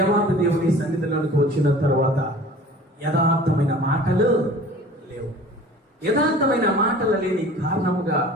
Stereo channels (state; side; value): normal; both; correlation 0.45